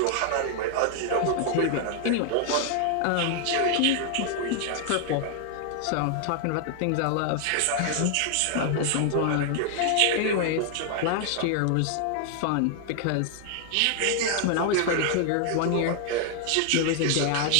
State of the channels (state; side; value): different; both; correlation 0.00